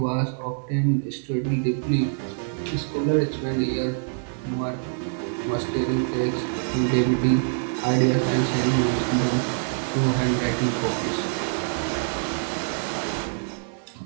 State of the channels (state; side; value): silent; left; 62 dB below the other